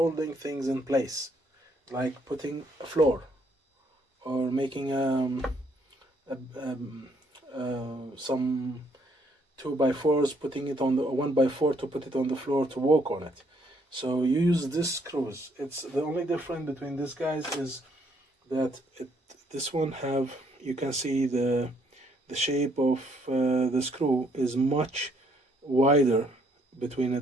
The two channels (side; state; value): both; normal; correlation 0.69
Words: things in place, like putting a floor or making some 2x4s, putting it on the 1x4 to put it on the floor to walk on it. So you use this screws. It's the only difference between these guys is that this one have, you can see the shape of the screw is much wider between